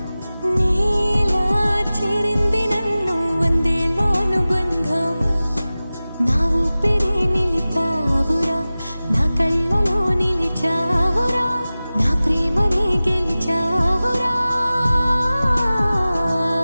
నీలా చేరింది నన్ను వందేళ్ళ అనుబంధం నా ఊపిరే నిలిపావురా నా కళ్ళలో నిలిచావురా నా ప్రేమనే గెలిచావురా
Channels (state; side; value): inverted; both; correlation -0.97